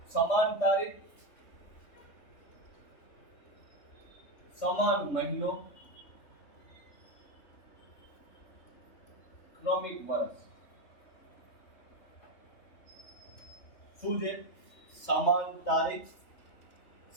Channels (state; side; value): late; right; 3.6 ms